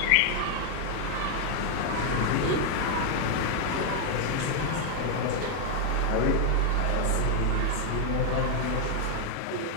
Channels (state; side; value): different; both; correlation 0.00